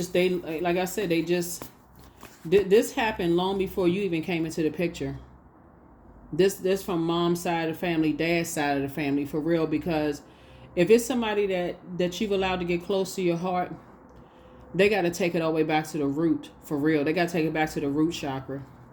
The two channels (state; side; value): identical; both; correlation 1.00